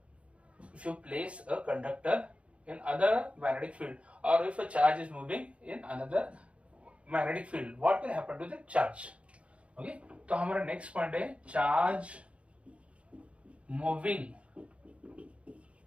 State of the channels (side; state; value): left; late; 0.062 ms